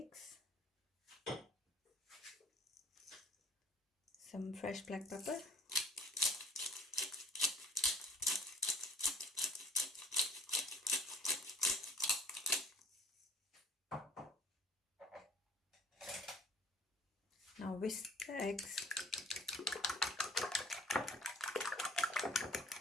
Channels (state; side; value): normal; both; correlation 0.51